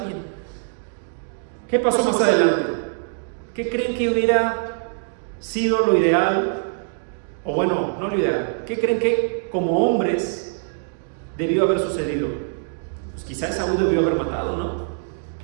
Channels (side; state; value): left; silent; 63 dB below the other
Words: ¿Qué pasó más adelante? ¿Qué creen que hubiera sido lo ideal? O bueno, no lo ideal. ¿Qué creen que como hombres debió haber sucedido? Pues quizá Esaú debió haber matado, ¿no?